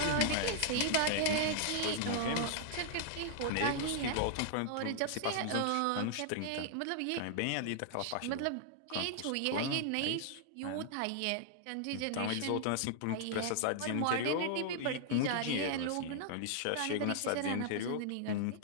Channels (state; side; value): different; both; correlation -0.01